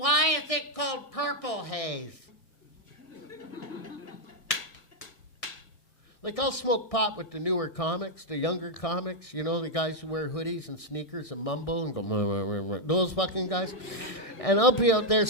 is it called purple haze? Like, I'll smoke pot with the newer comics, the younger comics, you know, the guys who wear hoodies and sneakers and mumble and go, those fucking guys. And I'll be out there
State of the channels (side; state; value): right; late; 1.6 ms